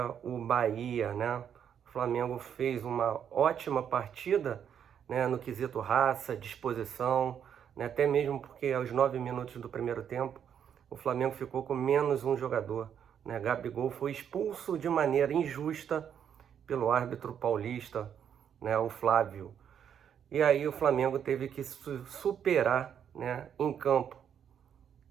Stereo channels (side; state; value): left; quieter; 8.5 dB